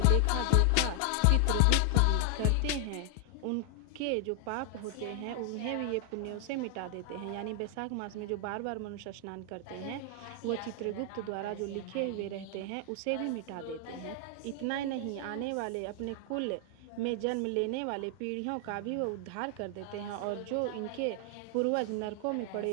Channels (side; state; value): both; different; correlation 0.00